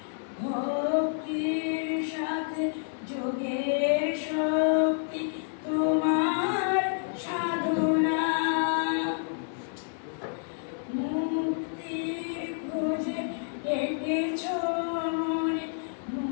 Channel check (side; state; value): right; silent; digital silence